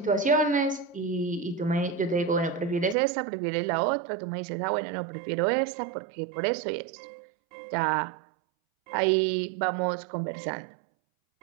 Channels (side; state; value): left; drops out; at 3.0 s